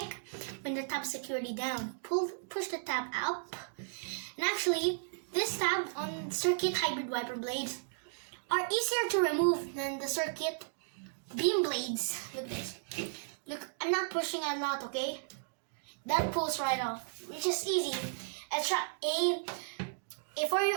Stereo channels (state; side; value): silent; left; digital silence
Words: when the tab is securely down. Push the tab up. And actually, this tab on circuit hybrid wiper blades are easier to remove than the circuit beam blades. Look this. Look, I'm not pushing a lot, okay? That pulls right off, which is easy. A